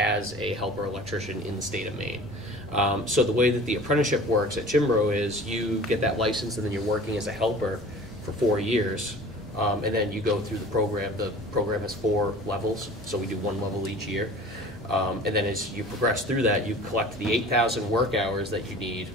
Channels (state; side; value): normal; both; correlation 0.43